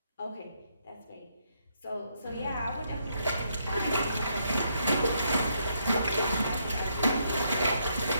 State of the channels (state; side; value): inverted; both; correlation -0.75